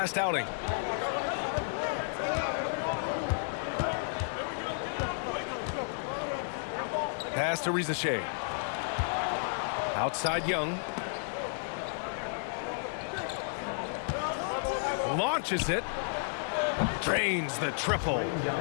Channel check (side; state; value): right; silent; digital silence